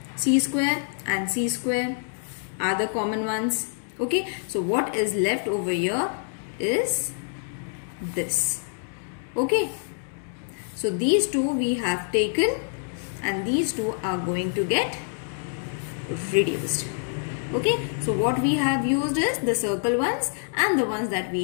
c square and c square are the common ones. Okay, so what is left over here is this. Okay, so these two we have taken and these two are going to get reduced. Okay, so what we have used is the circle ones, and the ones that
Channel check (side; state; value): right; silent; 61 dB below the other